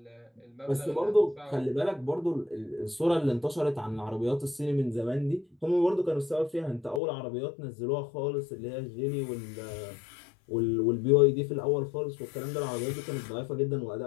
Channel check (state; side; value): drops out; right; at 7.0 s